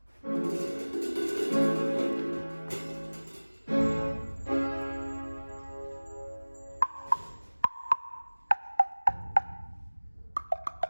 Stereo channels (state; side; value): inverted; both; correlation -1.00